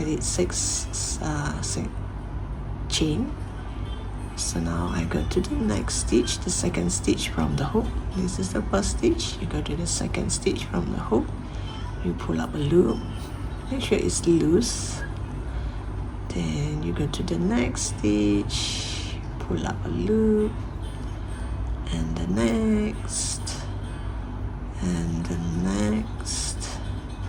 did 6 chain. So now I go to the next stitch, the second stitch from the hook. This is the first stitch. You go to the second stitch from the hook. You pull up a loop. Make sure it's loose. Then you go to the next stitch, pull up a loop, and the next, and the next.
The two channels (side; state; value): both; identical; correlation 1.00